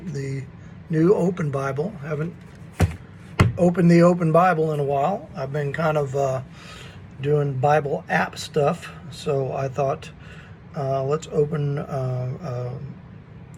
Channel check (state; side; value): identical; both; correlation 1.00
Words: the new open Bible. I haven't opened the open Bible in a while. I've been kind of doing Bible app stuff. So I thought, let's open a